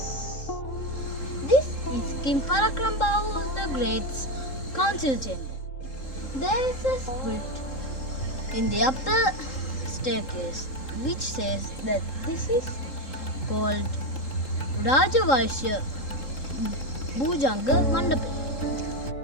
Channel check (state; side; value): late; right; 3.8 ms